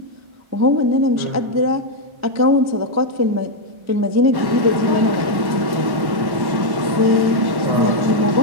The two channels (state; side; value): late; left; 1.1 ms